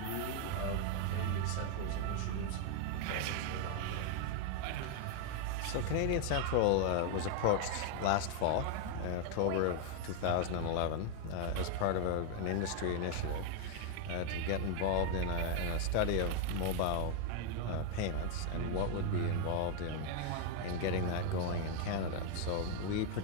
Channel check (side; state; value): both; different; correlation 0.01